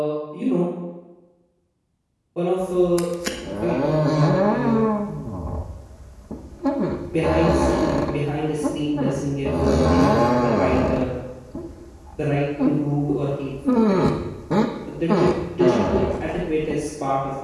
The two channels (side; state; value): both; identical; correlation 1.00